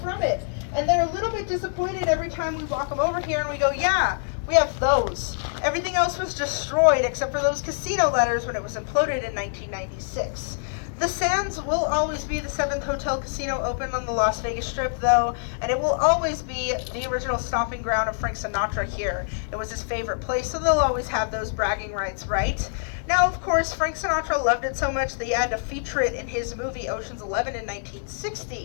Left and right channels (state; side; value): silent; right; digital silence